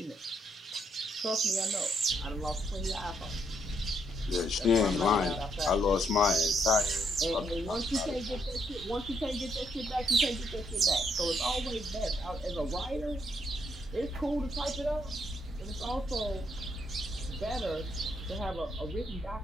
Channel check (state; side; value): normal; both; correlation 0.74